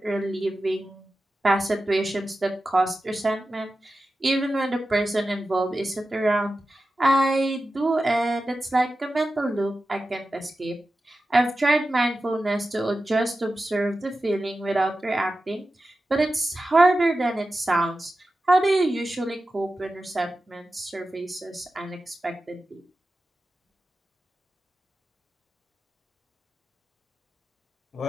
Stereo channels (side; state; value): both; normal; correlation 0.93